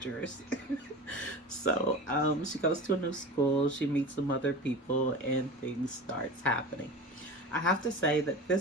So, she goes to a new school, she meets some other people, and things starts happening. I have to say that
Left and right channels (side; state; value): both; normal; correlation 0.32